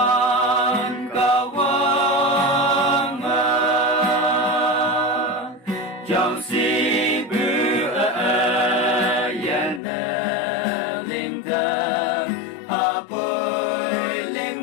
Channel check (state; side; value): drops out; right; at 9.8 s